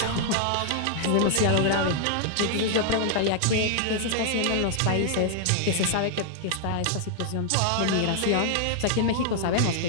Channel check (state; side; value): different; both; correlation 0.00